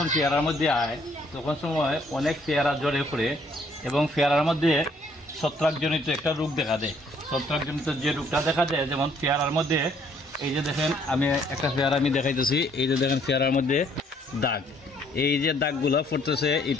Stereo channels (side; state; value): both; normal; correlation 0.65